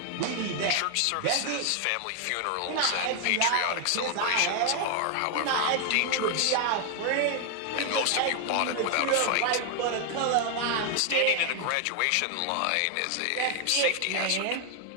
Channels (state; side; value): different; both; correlation 0.00